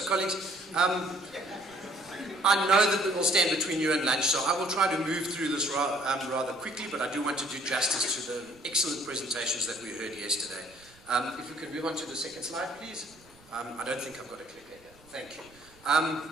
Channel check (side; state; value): right; noise; rumble, 28 dB below the sound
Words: colleagues, I know that it will stand between you and lunch, so I will try to move through this rather quickly, but I do want to do justice to the excellent presentations that we heard yesterday. If we could move on to the second slide, please. I don't think I've got a clicker here. Thank you.